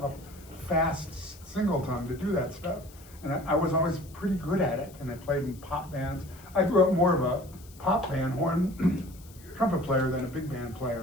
a fast single tongue to do that stuff. And I was always pretty good at it, and I played in pop bands. I grew up more of a pop band horn trumpet player than a big band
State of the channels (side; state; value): left; noise; hiss, 23 dB below the sound